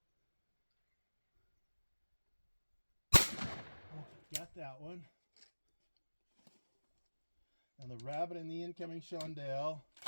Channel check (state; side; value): inverted; both; correlation -1.00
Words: Okay, got that one. And the rabbit and the incoming chandelle.